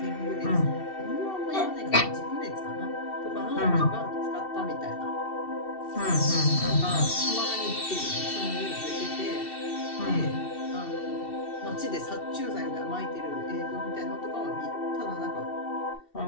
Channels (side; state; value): right; late; 2.7 ms